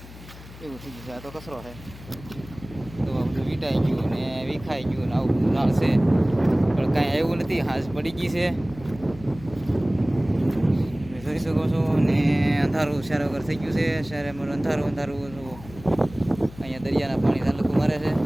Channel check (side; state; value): left; noise; hum, 17 dB below the sound